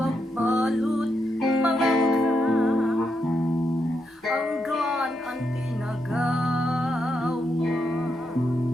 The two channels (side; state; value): both; normal; correlation 0.82